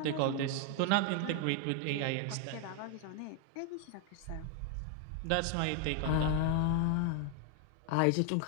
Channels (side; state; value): both; different; correlation 0.01